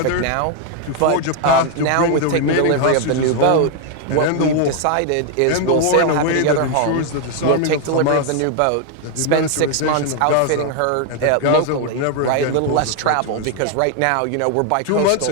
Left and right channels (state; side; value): different; both; correlation 0.01